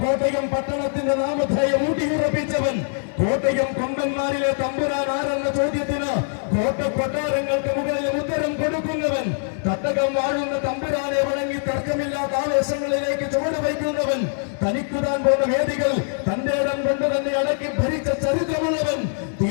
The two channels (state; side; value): silent; right; 64 dB below the other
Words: കോട്ടയം പട്ടണത്തിന്റെ നാമധേയം ഊട്ടിയുറപ്പിച്ചവൻ. കോട്ടയം കൊമ്പന്മാരിലെ തമ്പുരാൻ ആരെന്ന ചോദ്യത്തിന് കോട്ടക്കൊട്ടാരങ്ങൾക്ക് മുകളിൽ ഉത്തരം കൊടുക്കുന്നവൻ. തട്ടകം വാഴുന്ന തമ്പുരാനെ വണങ്ങി തർക്കമില്ലാത്ത ആവേശങ്ങളിലേക്ക് ചുവട് വയ്ക്കുന്നവൻ. തനിക്കുതാൻ പോകുന്ന വേദികൾ തന്റെ ഇടം കൊണ്ട് തന്നെ അടക്കി ഭരിച്ച ചരിത്രമുള്ളവൻ.